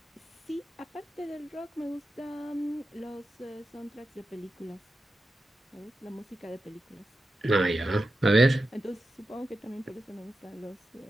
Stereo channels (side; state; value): both; normal; correlation 0.91